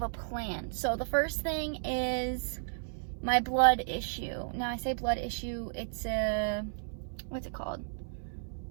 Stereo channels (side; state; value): left; silent; 56 dB below the other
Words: a plan. So the first thing is my blood issue. Now I say blood issue, it's what's it called?